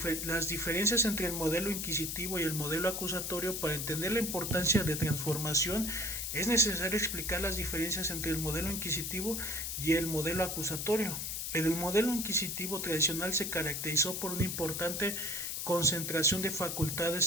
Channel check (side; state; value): left; noise; hiss, 3 dB below the sound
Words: diferencias entre el modelo inquisitivo y el modelo acusatorio. Para entender la importancia de transformación, es necesario explicar las diferencias entre el modelo inquisitivo y el modelo acusatorio. El modelo inquisitivo tradicional se caracterizó por una importante concentración de